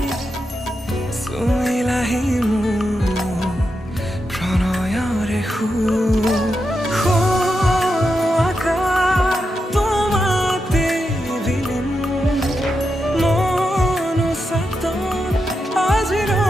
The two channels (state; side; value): normal; both; correlation 0.87